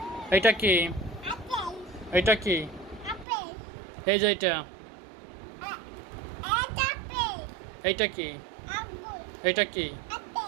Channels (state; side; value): drops out; left; at 3.2 s